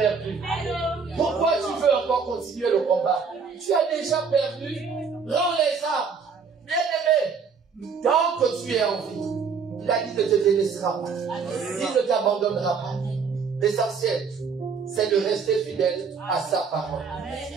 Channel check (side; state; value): left; quieter; 5.6 dB